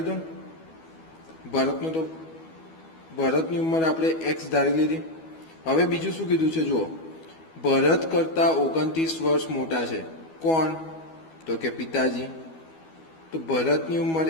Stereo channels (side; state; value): right; late; 12 ms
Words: દો. ભરતની ઉંમર આપણે x ધારી લીધી. હવે બીજું શું કીધું છે જુઓ, ભરત કરતા 29 વર્ષ મોટા છે. કોણ? તો કે પિતાજી. તો ભરતની ઉંમર